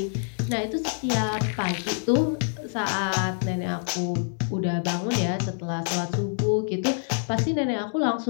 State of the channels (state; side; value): silent; right; digital silence